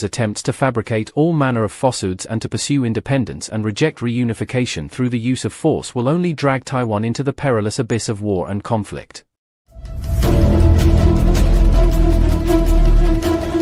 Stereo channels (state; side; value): identical; both; correlation 1.00